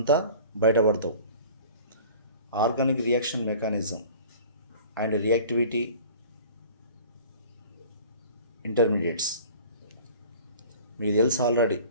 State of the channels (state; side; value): inverted; both; correlation -0.45